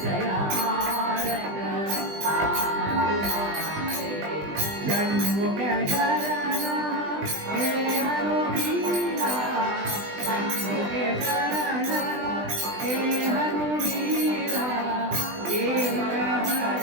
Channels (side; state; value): left; late; 20 ms